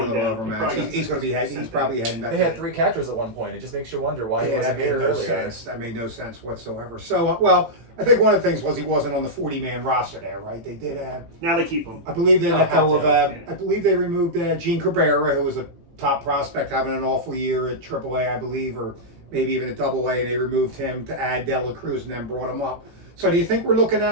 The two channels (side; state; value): left; late; 18 ms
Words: a going little down. overmatched. He probably He's going to be he's probably heading back. They had 3 catchers at one point. It just makes you wonder why he Yeah, wasn't that made here no earlier. sense. That made no sense whatsoever. So, well, I think one of the things was he wasn't on the 40-man roster there, right? They did. Now they keep him. I believe they They'll let go have of. to. I believe they removed Gene Cabrera, who was a top prospect, having an awful year at AAA, I believe, or maybe even at AA, and they removed him to add De La Cruz and then brought him up. So, do you think we're looking